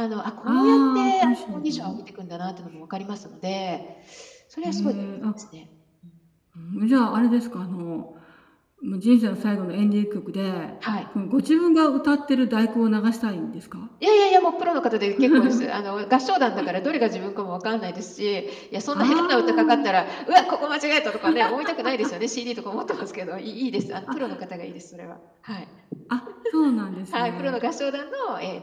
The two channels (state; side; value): identical; both; correlation 1.00